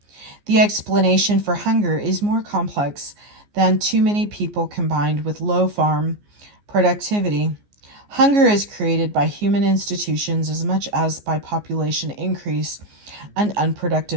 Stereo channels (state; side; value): late; left; 14 ms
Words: The explanation for hunger is more complex than too many people combined with low farm productivity. Hunger is created by human institutions as much as by population increase and